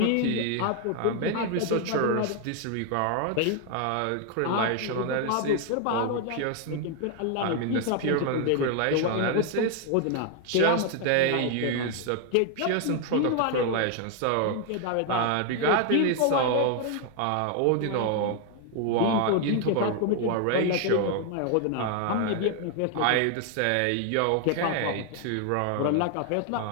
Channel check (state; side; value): different; both; correlation 0.00